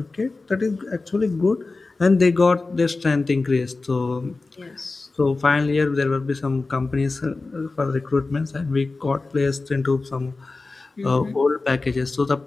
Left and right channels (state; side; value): quieter; right; 3.6 dB